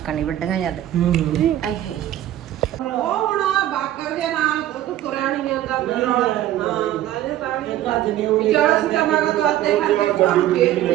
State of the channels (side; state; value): left; quieter; 13.1 dB